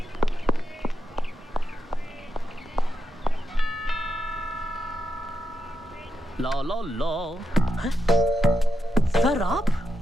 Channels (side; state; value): both; normal; correlation 0.85